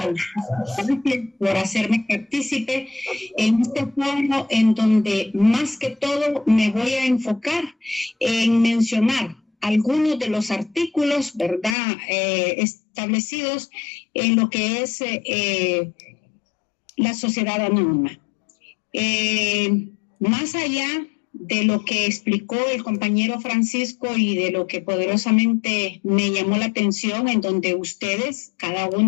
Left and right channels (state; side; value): drops out; right; at 11.8 s